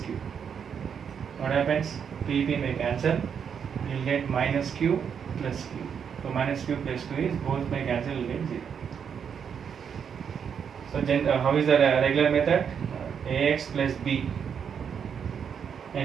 What happens? P may cancel. You will get minus q plus q. So minus q plus q is both may cancel. You will get 0. So how is the regular method? Ax plus b,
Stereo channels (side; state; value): left; quieter; 7.3 dB